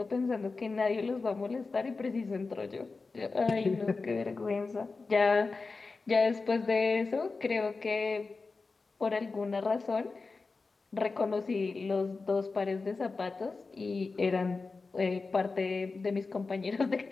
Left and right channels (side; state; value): right; quieter; 4.0 dB